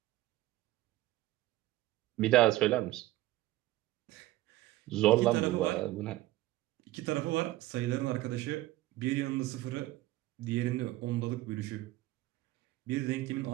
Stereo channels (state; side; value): quieter; left; 16.9 dB